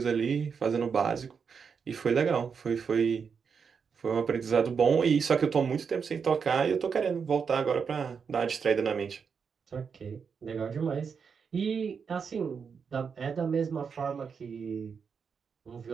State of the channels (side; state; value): left; quieter; 6.1 dB